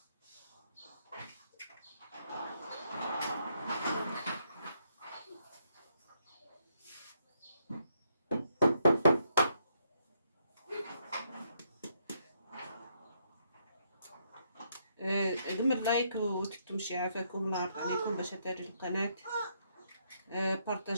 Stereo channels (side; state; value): both; inverted; correlation -0.75